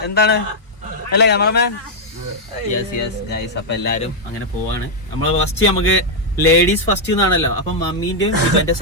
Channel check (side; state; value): both; normal; correlation -0.03